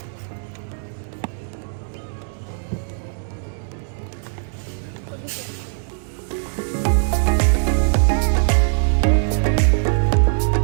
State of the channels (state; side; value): silent; left; 65 dB below the other